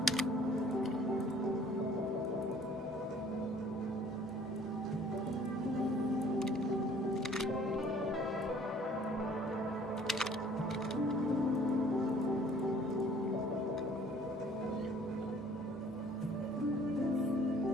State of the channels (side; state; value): both; normal; correlation 0.55